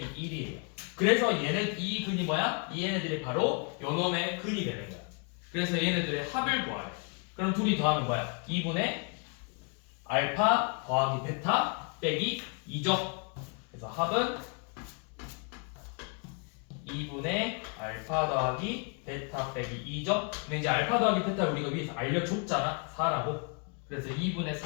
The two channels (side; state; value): right; quieter; 37.8 dB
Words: 1이에요. 그래서 이 근이 뭐야? 이 얘네들이 바로 요놈의 근이 되는 거야. 그래서 얘네들의 합을 구하래. 그럼 둘이 더하면 뭐야? 2분의 알파 더하기 베타 빼기 2죠. 그래서 합은 2분의 알파 더하기 베타 빼기 2죠. 근데 이제 알파 더하기 베타 우리가 위에서 알려줬잖아. 4라고. 그래서 2분의